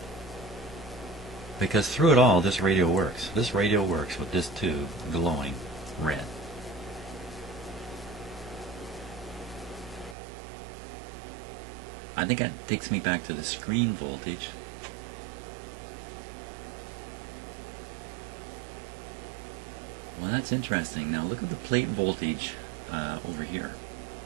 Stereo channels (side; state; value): left; drops out; at 10.2 s